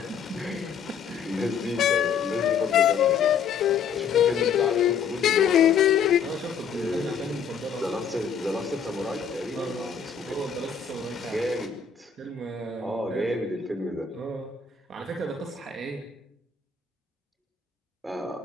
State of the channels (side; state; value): right; quieter; 6.6 dB